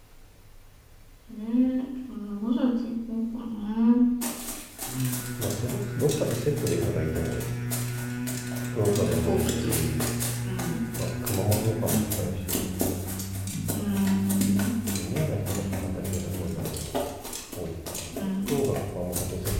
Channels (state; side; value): identical; both; correlation 1.00